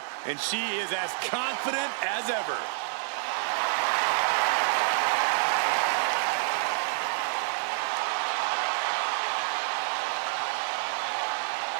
and she is as confident as ever.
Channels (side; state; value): left; silent; 57 dB below the other